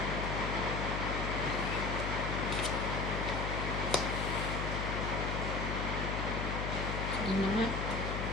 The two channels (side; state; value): left; noise; hum, 2 dB below the sound